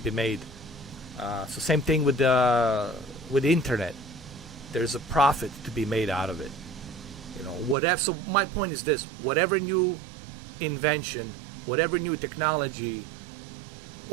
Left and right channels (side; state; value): left; drops out; at 7.8 s